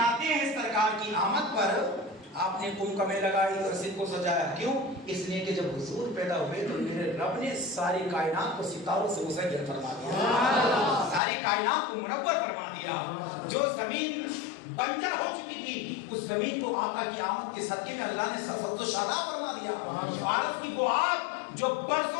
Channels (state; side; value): drops out; right; at 11.2 s